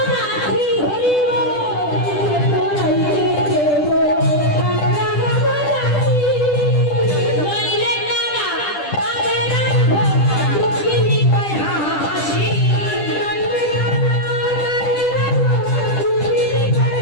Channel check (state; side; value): late; right; 10 ms